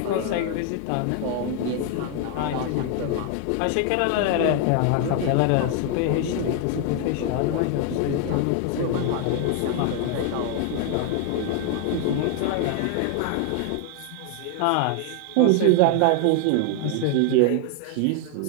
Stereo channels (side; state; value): both; different; correlation 0.00